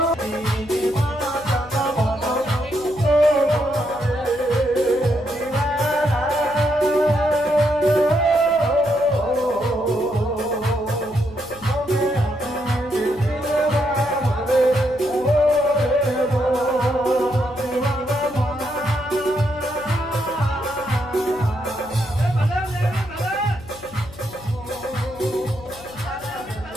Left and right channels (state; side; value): noise; left; hum, 19 dB below the sound